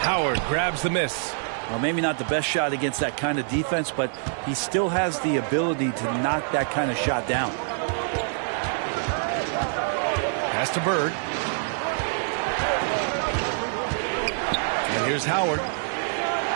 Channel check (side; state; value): left; silent; digital silence